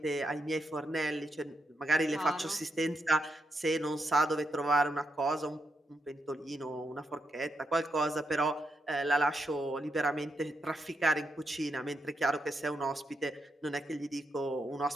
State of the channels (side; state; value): both; normal; correlation 0.82